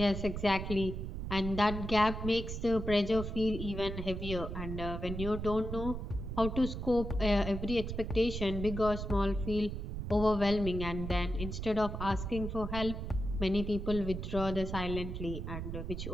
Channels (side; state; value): right; noise; rumble, 5 dB below the sound